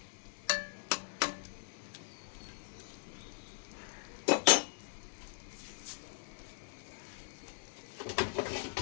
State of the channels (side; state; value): right; silent; digital silence